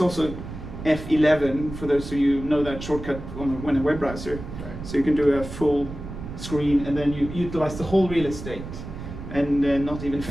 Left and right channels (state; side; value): noise; right; rumble, 10 dB below the sound